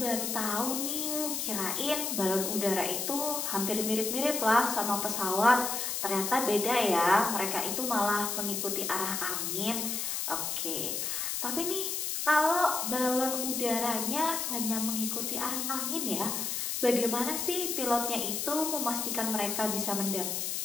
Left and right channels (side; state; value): left; noise; hiss, 1 dB below the sound